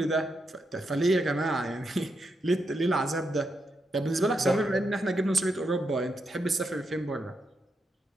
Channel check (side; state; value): both; normal; correlation 0.83